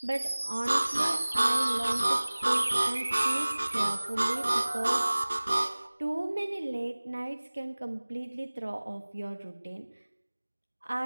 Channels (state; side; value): inverted; both; correlation -1.00